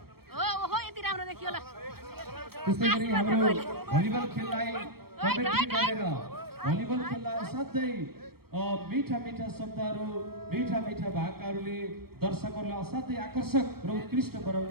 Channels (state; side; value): late; left; 0.95 ms